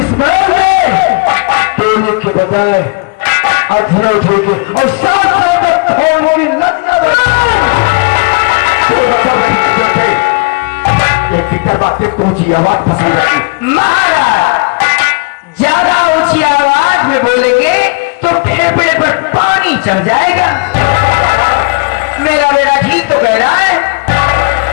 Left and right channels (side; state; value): right; quieter; 29.7 dB